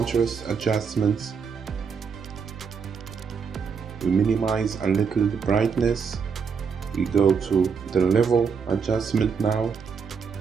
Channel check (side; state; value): left; quieter; 6.0 dB